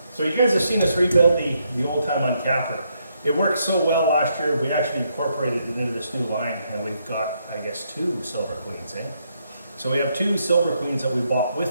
So you guys have seen us rebuild the old time uncapper. It worked so well last year, we actually incorporated it into this new line, and we've got, I guess, 2 Silver Queens, eh? So we have 2 Silver Queens that we bought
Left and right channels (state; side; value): inverted; both; correlation -0.76